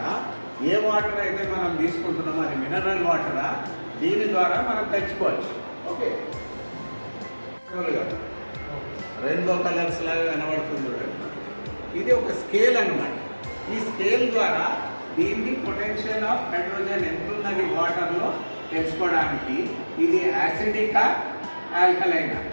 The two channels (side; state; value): both; inverted; correlation -1.00